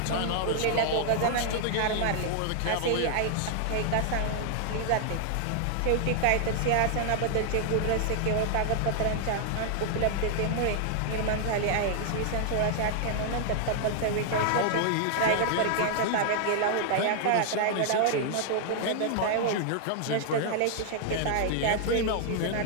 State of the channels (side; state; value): both; different; correlation 0.00